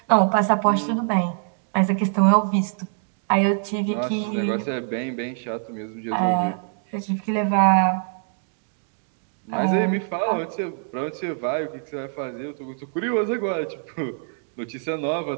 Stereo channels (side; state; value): left; silent; 62 dB below the other